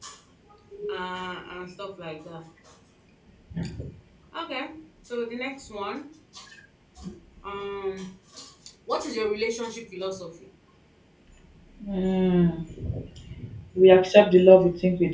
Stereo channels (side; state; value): both; identical; correlation 1.00